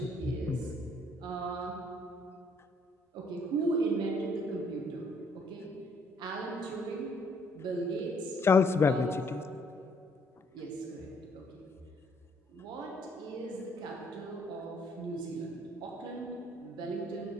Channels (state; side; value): normal; both; correlation 0.66